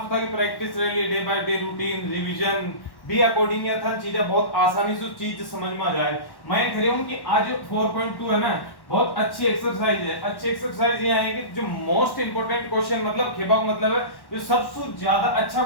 से था कि प्रैक्टिस रही day by day routine revision भी अकॉर्डिंग ये था चीजें बहुत आसानी से चीज समझ में आ जाए। मैं कह रहा हूं कि आज 4.2 है ना बहुत अच्छी एक्सरसाइज है, अच्छी एक्सरसाइज ये है कि जो मोस्ट इंपोर्टेंट क्वेश्चन मतलब खेबा मतलब है जो सबसे ज्यादा अच्छा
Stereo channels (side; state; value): right; late; 1.1 ms